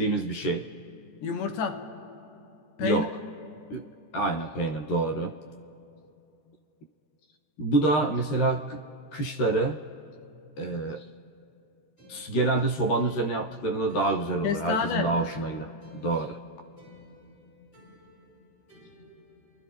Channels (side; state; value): right; late; 13 ms